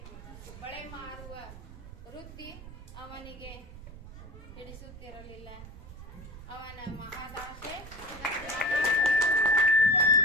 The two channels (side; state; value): right; noise; rumble, 14 dB below the sound